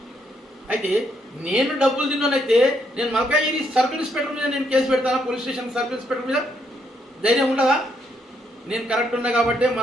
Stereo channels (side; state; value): both; normal; correlation 0.74